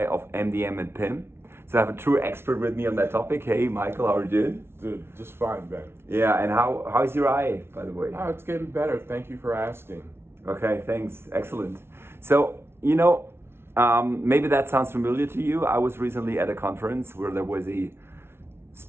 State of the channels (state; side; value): late; left; 0.12 ms